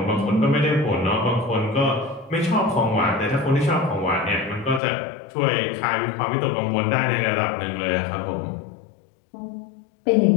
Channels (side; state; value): right; drops out; at 4.8 s